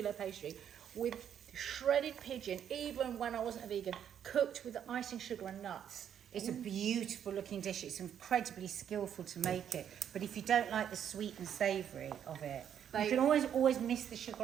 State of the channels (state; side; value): quieter; left; 9.1 dB